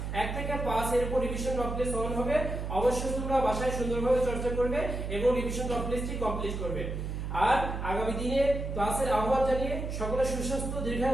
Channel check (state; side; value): noise; right; hum, 4 dB below the sound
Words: 1 থেকে 5 এর উপর রিভিশন টপ লিস্ট অন হবে। অবশ্যই তোমরা বাসায় সুন্দরভাবে চর্চা করবে এবং রিভিশন টপ লিস্টটি কমপ্লিট করবে। আর আগামী দিনে ক্লাসের আহ্বান জানিয়ে সকলের সুস্বাস্থ্য